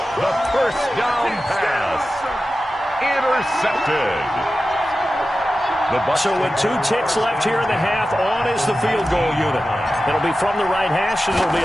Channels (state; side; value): normal; both; correlation 0.94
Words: The 1st down pass. Intercepted. So with 2 ticks left here in the half, on is the field goal unit. It'll be from the right hash, and it'll be